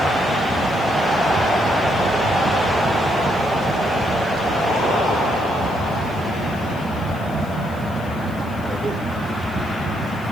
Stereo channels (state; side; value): noise; right; hiss, 24 dB below the sound